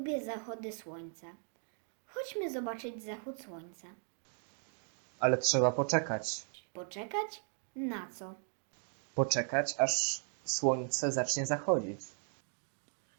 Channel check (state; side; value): silent; left; 53 dB below the other